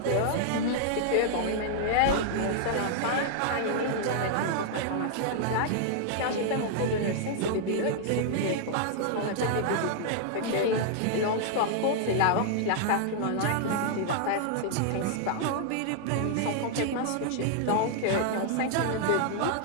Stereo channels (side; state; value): both; different; correlation -0.01